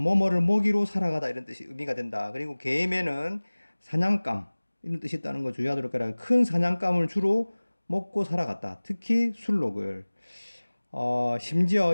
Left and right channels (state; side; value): inverted; both; correlation -1.00